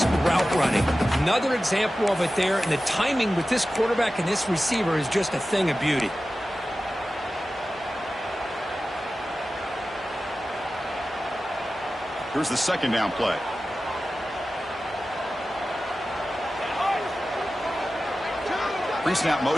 route running. Another example of it there, and the timing with this quarterback and this receiver is just a thing of beauty. Here's the 2nd down play. Pre-snap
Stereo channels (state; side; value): normal; both; correlation 0.94